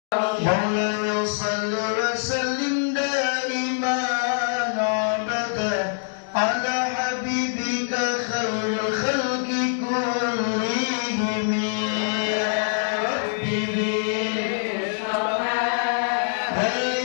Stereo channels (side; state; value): right; silent; digital silence